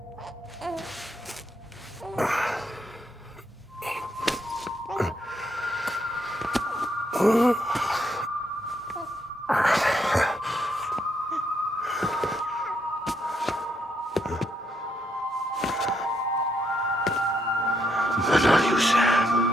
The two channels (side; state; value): both; normal; correlation 0.76